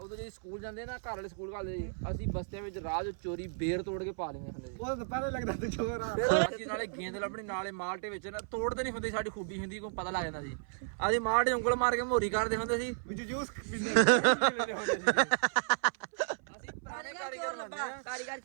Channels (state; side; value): silent; left; 55 dB below the other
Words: ਜਦੋਂ ਸਕੂਲ ਜਾਂਦੇ ਨਾ ਘਰ ਵਾਲੇ ਸਕੂਲ ਘੱਲਦੇ ਸੀ, ਅਸੀਂ ਬਸਤਿਆਂ ਵਿੱਚ ਰਾਹ 'ਚ ਚੋਰੀ ਬੇਰ ਤੋੜ ਕੇ ਪਾ ਲੈਂਦੇ ਹੁੰਦੇ ਸੀ। ਉਹ ਤਾਂ ਪਹਿਲੇ ਲੱਗਦਾ ਤੇ ਚੋਰ ਆ। ਫਿਰ ਅਸੀਂ ਨਾਲੇ ਗੇਂਦ ਲੱਭਣੀ ਨਾਲੇ ਮਾਲਟੇ ਵਿੱਚ ਨਾ ਤੋੜਦੇ ਨਹੀਂ ਹੁੰਦੇ, ਸਾਡੀ ਖੂਬੀ ਹੁੰਦੀ ਕੋਈ ਪਤਾ ਲੱਗ ਜਾਂਦਾ ਸੀ। ਅਸੀਂ ਮਾਲਟੇ ਉਂਗਲ ਮਾਰ ਕੇ ਮੋਰੀ ਕਰਦੇ ਹੁੰਦੇ ਸੀ। ਵਿੱਚ ਜੂਸ ਪੀਂਦੇ ਅਸੀਂ ਪੁਰਾਣੇ ਕਾਰੀਗਰ ਲੱਭਾ ਕਾਰੀਗਰ